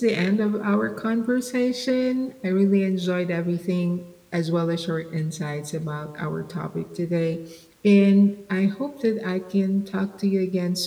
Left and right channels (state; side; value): identical; both; correlation 1.00